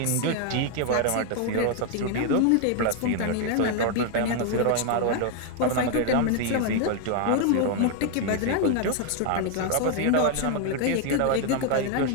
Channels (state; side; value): different; both; correlation 0.01